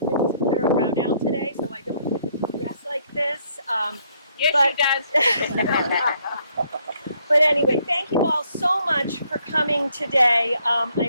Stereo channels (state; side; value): inverted; both; correlation -0.69